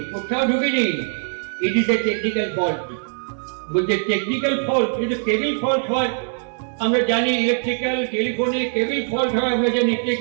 কোথাও ঢুকিনি, it is a technical fault. বলছে টেকনিক্যাল ফল্ট? কিন্তু কেবিল ফল্ট হয় আমরা জানি, ইলেকট্রিক্যাল টেলিফোনে কেবিল ফল্ট হয় আমরা জানি,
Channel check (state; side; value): silent; left; 64 dB below the other